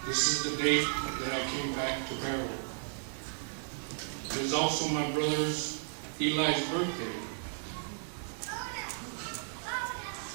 This is the date that I came back to Barrow. It is also my brother's Eli's birthday.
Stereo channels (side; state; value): left; silent; digital silence